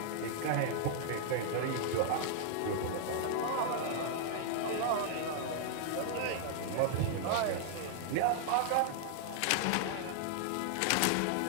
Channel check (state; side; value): different; both; correlation -0.01